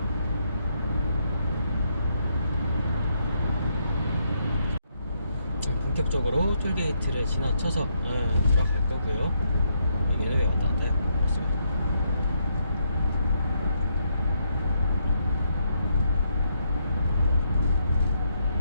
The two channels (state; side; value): inverted; both; correlation -0.76